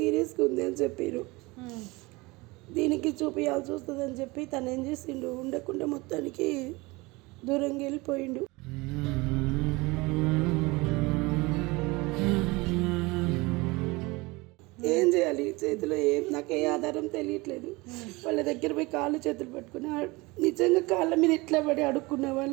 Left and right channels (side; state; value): left; quieter; 23.6 dB